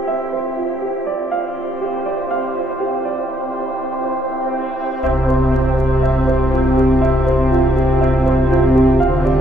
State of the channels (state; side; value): normal; both; correlation 0.71